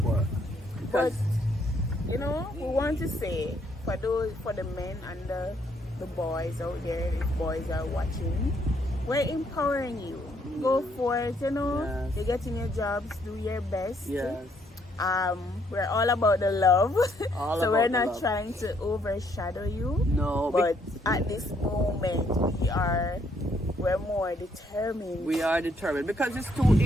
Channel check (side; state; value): both; normal; correlation 0.70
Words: work. But Because you know, we want to say for the men and the boys out there, if boys are watching, we're empowering you. Go for it, you know. Yes. You're getting your jobs, do your best. yes, We're all about the love. All so we're about the not love. trying to overshadow you. no, But at this moment we're more determined. we are determined because if